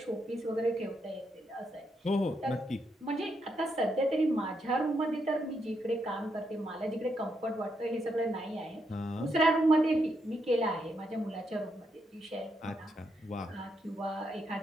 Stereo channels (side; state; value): both; normal; correlation 0.79